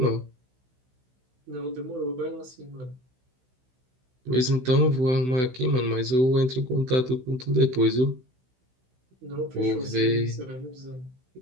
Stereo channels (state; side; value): late; left; 16 ms